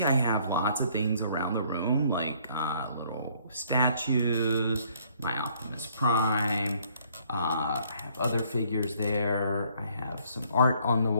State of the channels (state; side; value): inverted; both; correlation -0.63